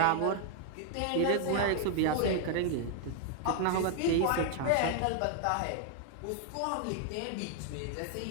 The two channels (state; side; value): different; both; correlation 0.00